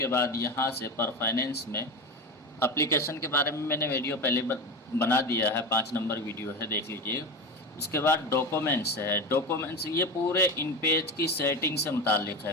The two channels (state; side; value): normal; both; correlation 0.23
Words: बाद यहाँ से पर फाइनेंस में एप्लीकेशन के बारे में मैंने वीडियो पहले बना दिया है, 5 नंबर वीडियो है, देख लीजिए। उसके बाद डॉक्यूमेंट्स है। डॉक्यूमेंट्स ये पूरे इन पेज की सेटिंग से मुतालिक